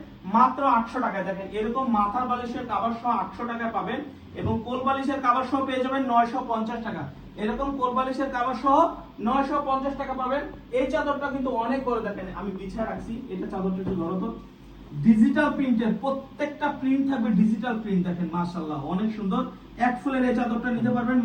মাত্র 800 টাকায়। দেখেন এরকম মাথার বালিশের কভার সহ 800 টাকায় পাবেন এবং কোল বালিশের কভার সহ পেয়ে যাবেন 950 টাকা। এরকম কোল বালিশের কভার সহ 950 টাকা পাবেন। এই চাদরটা কিন্তু অনেক বড়, দেখেন আমি বিছায় রাখছি, এটা চাদরটা একটু ধরো তো। ডিজিটাল প্রিন্টের, প্রত্যেকটা প্রিন্ট থাকবে ডিজিটাল প্রিন্ট। দেখেন মাশাআল্লাহ অনেক সুন্দর। এক ফুলের এই চাদরটা নিতে পারবেন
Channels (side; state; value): both; identical; correlation 1.00